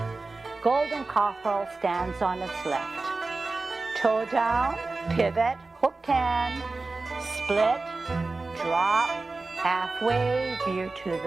golden cockerel stands on its left. Toe down, pivot, hooked hand, split, drop, halfway, veer to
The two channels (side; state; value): left; quieter; 3.6 dB